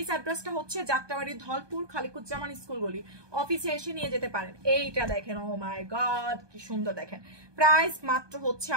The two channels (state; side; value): late; left; 1.2 ms